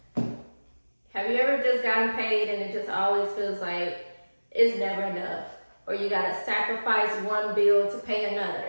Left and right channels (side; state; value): both; inverted; correlation -1.00